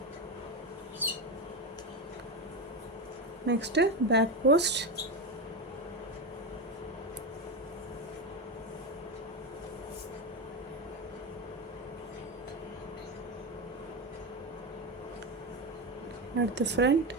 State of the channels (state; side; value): normal; both; correlation 0.15